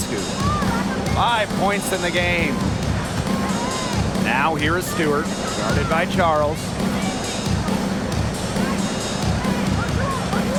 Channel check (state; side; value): identical; both; correlation 1.00